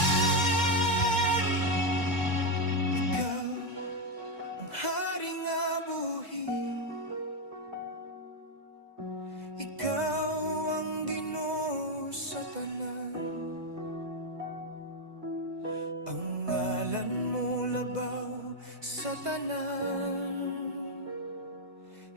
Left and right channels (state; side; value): late; left; 2.1 ms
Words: Ikaw ang hari nga buhi, ikaw ang Ginoo sa tanan. Ang ngalan mo labaw sa tanan,